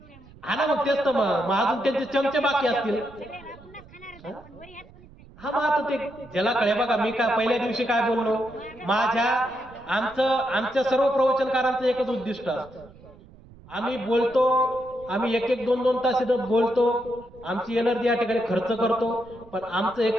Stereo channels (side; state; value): right; noise; rumble, 22 dB below the sound